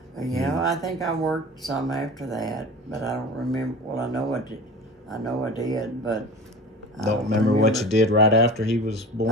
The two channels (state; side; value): normal; both; correlation 0.36